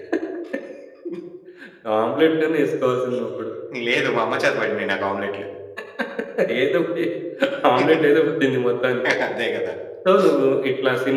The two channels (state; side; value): identical; both; correlation 1.00